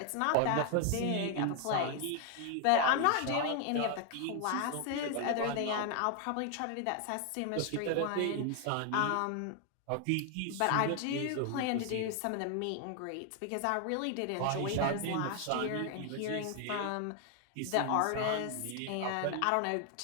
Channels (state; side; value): different; both; correlation 0.00